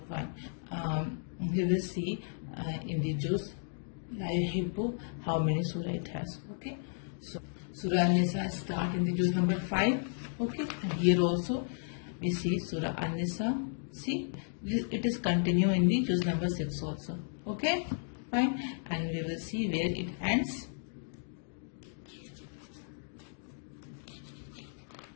fine. We will see in the juz La Yuhibbu how many surah it has. Okay, so Surah An-Nisa start in the juz number 5. Okay, and here also we see Surah An-Nisa. See, it is continue in the juz number 6 also. Okay, fine, and we will see where it ends.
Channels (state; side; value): silent; right; digital silence